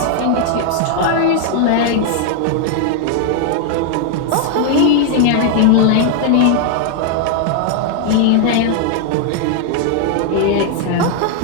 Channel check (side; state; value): both; different; correlation 0.00